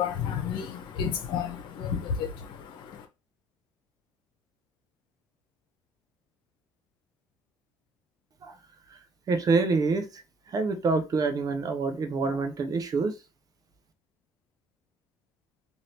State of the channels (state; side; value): normal; both; correlation 0.57